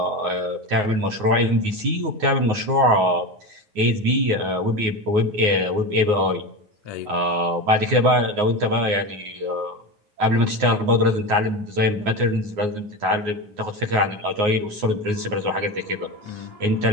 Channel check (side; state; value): left; late; 9.5 ms